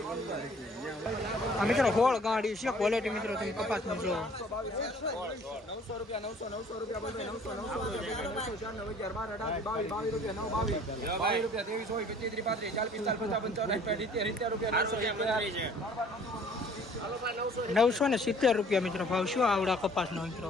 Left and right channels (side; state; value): both; normal; correlation 0.54